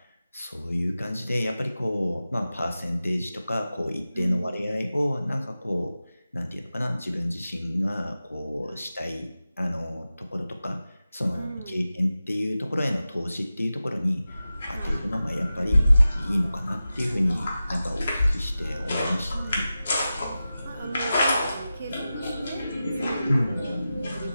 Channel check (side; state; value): both; inverted; correlation -0.94